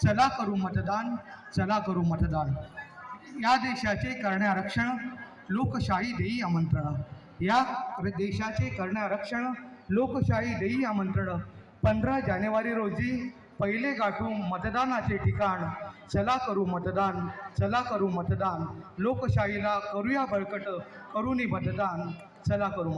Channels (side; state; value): both; identical; correlation 1.00